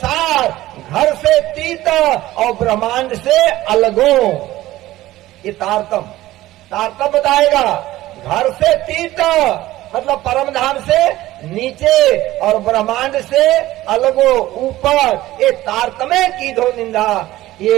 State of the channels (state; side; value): quieter; left; 16.1 dB